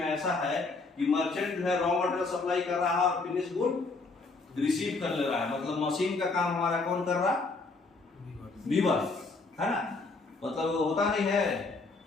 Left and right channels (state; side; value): quieter; right; 3.8 dB